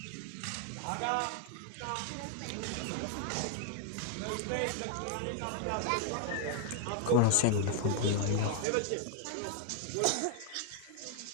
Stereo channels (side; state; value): both; different; correlation 0.00